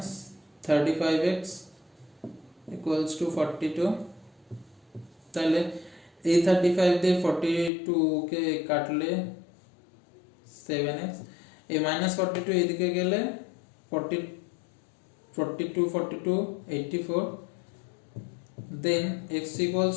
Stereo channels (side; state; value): right; drops out; at 7.7 s